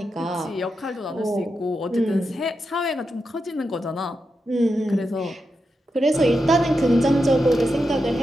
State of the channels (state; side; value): normal; both; correlation 0.87